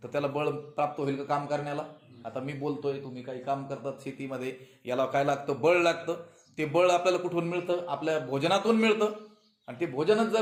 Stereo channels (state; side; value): identical; both; correlation 1.00